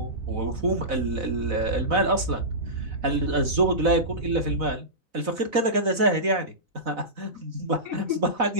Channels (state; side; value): late; left; 4.0 ms